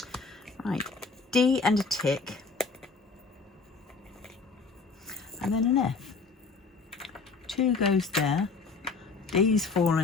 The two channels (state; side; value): quieter; right; 4.4 dB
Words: Right, D and a tick. And then an F. 2 goes there. D's